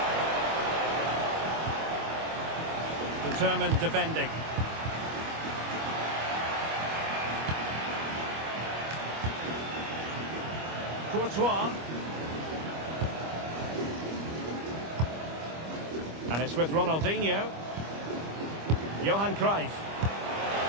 Determined defending. Courtois. And it's with Ronaldinho. Johan Cruyff.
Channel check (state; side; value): late; left; 25 ms